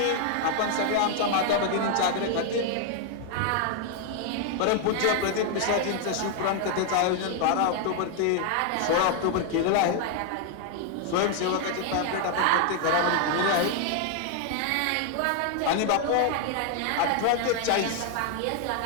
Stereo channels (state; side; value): different; both; correlation 0.00